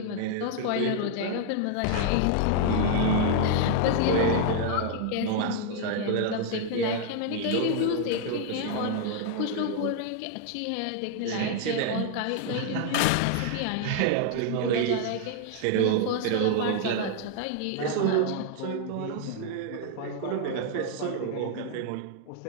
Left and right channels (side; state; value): both; different; correlation 0.00